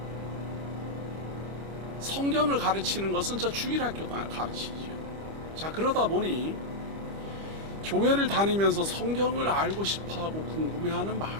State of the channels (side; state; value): left; late; 25 ms